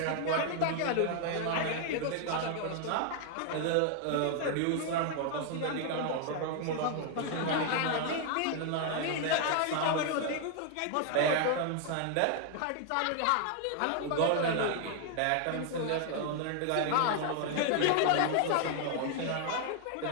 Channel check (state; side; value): different; both; correlation 0.00